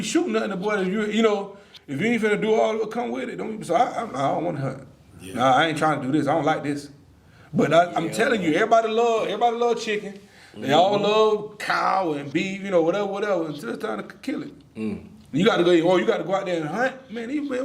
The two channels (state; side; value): identical; both; correlation 1.00